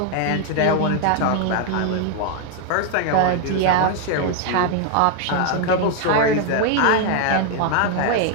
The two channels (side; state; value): both; different; correlation 0.00